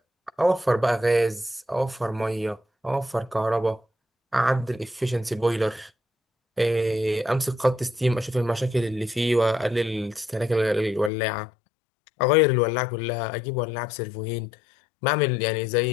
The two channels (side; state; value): right; drops out; at 11.1 s